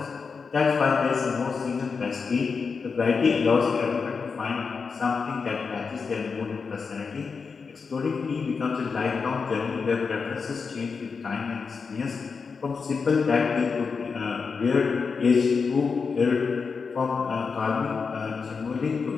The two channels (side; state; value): right; quieter; 5.2 dB